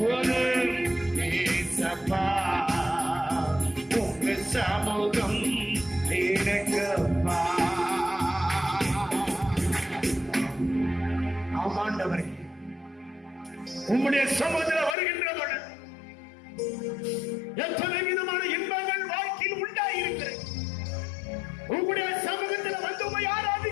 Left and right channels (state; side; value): drops out; right; at 15.0 s